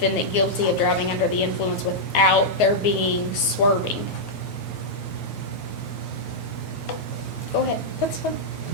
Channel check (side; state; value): right; late; 9.4 ms